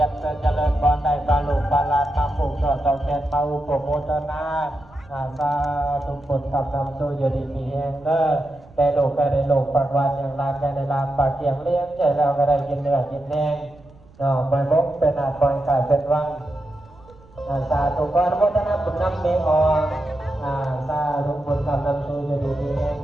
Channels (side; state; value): right; noise; rumble, 25 dB below the sound